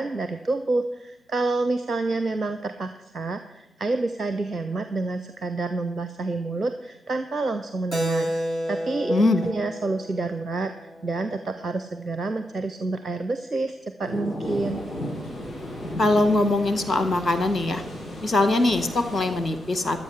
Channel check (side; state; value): both; normal; correlation 0.84